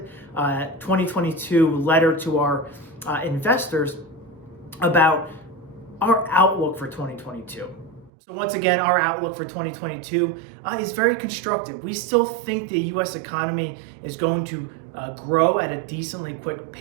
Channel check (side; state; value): left; drops out; at 8.1 s